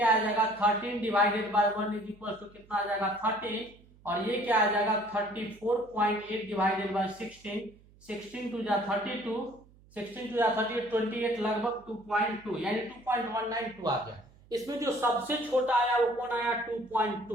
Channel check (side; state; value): right; noise; hum, 27 dB below the sound